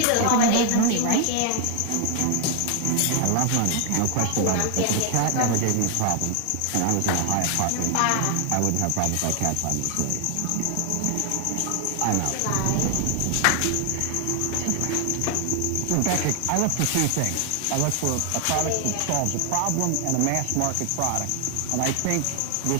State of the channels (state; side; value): different; both; correlation 0.00